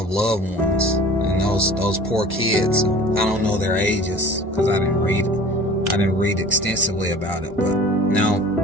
loved ones and those poor kids. I don't know their ages because I didn't read extensively about it, but now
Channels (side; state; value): both; normal; correlation 0.44